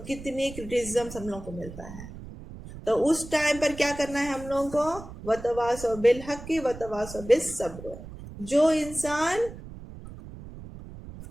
کتنی کرٹیسزم ہم لوگ کو ملتا ہے۔ تو اس ٹائم پر کیا کرنا ہے ہم لوگوں کو؟ وتواصوا بالحق وتواصوا بالصبر۔ جو انسان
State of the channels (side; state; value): right; noise; rumble, 14 dB below the sound